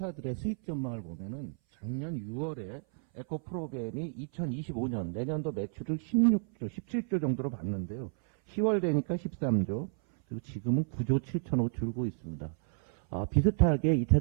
수익 전망을 보면은 작년 6월에 에코프로벤이 2025년 내년도 매출을 16조, 17조 정도로 봤는데요. 10월 되니까 13조, 그리고 지금은 9조 7천억 줄고 있습니다. 비슷하게 2차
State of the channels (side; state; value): left; silent; 57 dB below the other